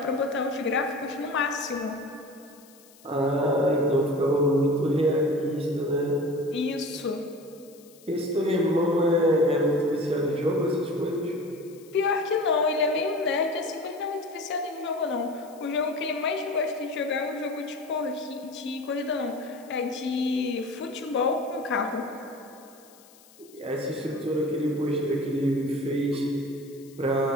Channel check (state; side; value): noise; left; hiss, 25 dB below the sound